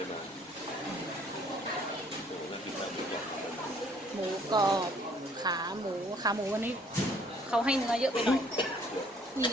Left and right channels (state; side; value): normal; both; correlation 0.60